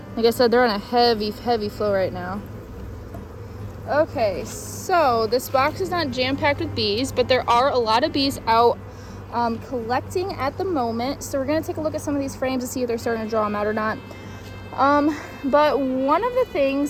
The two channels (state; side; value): identical; both; correlation 1.00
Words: Like I said, they're on a heavy flow right now. Okay, so this box is not jam-packed with bees, but there are a lot of bees out collecting at the moment. So we're gonna take a look at some of these frames to see if they're starting to draw them out or not. But one of the